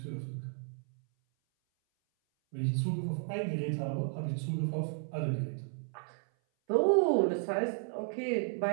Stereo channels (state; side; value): silent; left; 56 dB below the other